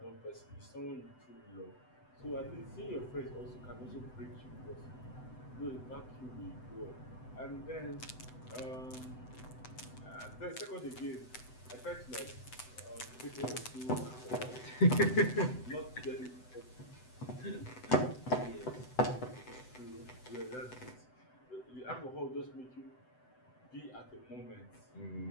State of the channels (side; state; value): right; late; 7.9 ms